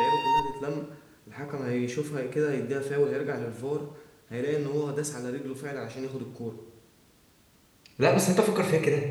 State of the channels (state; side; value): identical; both; correlation 1.00